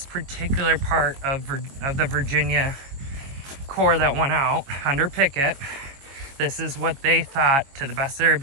particular part of the Virginia Corps that went out under Pickett, this is what they thought, to the best of their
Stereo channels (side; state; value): left; late; 22 ms